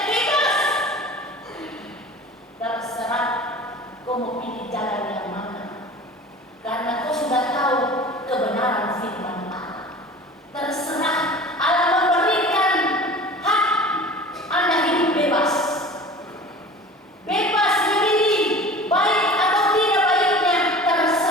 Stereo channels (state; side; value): normal; both; correlation 0.40